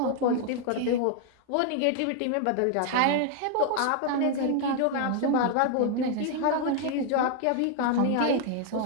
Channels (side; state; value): both; different; correlation 0.00